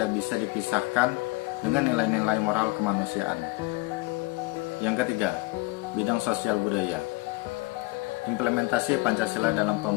bisa dipisahkan dengan nilai-nilai moral kemanusiaan. Yang ketiga, bidang sosial budaya. Implementasi Pancasila dalam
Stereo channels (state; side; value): quieter; right; 24.0 dB